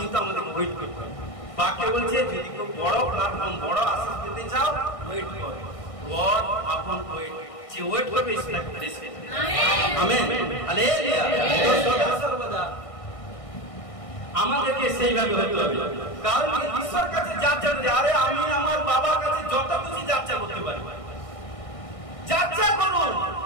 আমাদের ওয়েট করতে হবে। বাক্য বলছে যদি কেউ বড় প্ল্যাটফর্ম, বড় আশীষ পেতে চাও, ওয়েট করো। গড আপন ওয়েট করবে ঈশ্বরকে প্রেস করবে। আমেন। হালেলুয়া। সর্বদা আমাদেরকে সেইভাবে হতে হবে। কারণ ঈশ্বর কাছে যাচ্ছা করি, আরে আমি আমার বাবার কাছে যত কিছু যাচ্ছা করতে পারি, যাচ্ছা করুন,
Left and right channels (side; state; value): right; late; 1.6 ms